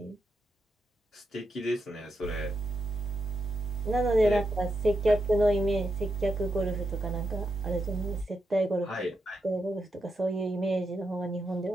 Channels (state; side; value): normal; both; correlation 0.84